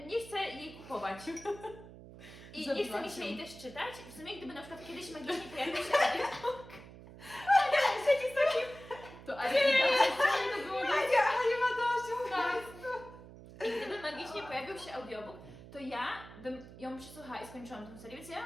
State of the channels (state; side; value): noise; right; hum, 17 dB below the sound